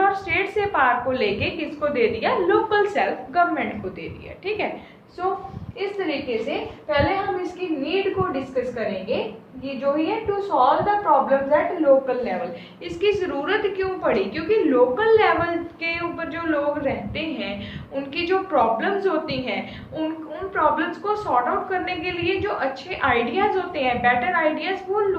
और स्टेट से पावर को लेके किसको दे दिया, लोकल सेल्फ गवर्नमेंट को दे दिया। ठीक है, सो इस तरीके से पहले हम इसकी नीड को डिस्कस करेंगे। ये जो ही है to solve the problems at local level. इसकी जरूरत क्यों पड़ी, क्योंकि लोकल लेवल के ऊपर जो लोग रहते हैं उनकी जो प्रॉब्लम्स होती हैं उन प्रॉब्लम्स को सॉर्ट आउट करने के लिए जो अच्छे आइडियाज होते हैं, बेटर आइडियाज, वो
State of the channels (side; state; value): both; identical; correlation 1.00